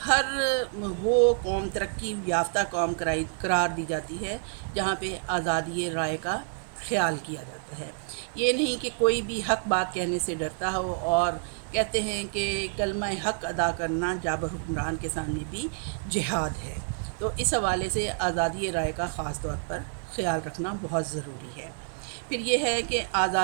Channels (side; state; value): left; silent; 59 dB below the other